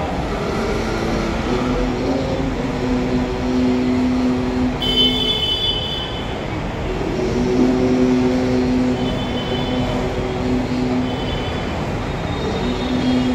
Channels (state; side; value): identical; both; correlation 1.00